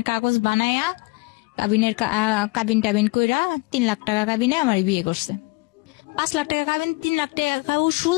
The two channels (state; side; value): quieter; right; 26.6 dB